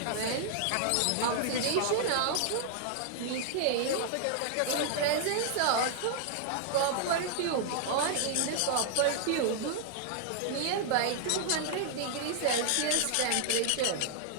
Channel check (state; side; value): different; both; correlation -0.01